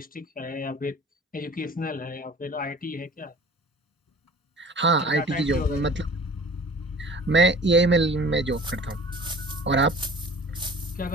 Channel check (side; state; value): both; normal; correlation 0.44